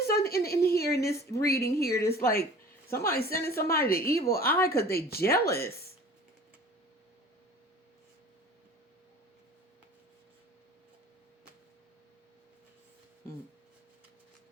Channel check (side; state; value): both; normal; correlation 0.44